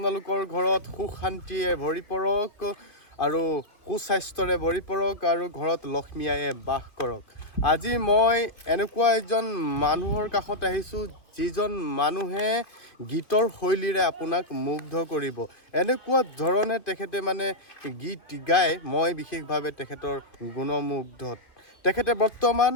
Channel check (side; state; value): right; late; 2.7 ms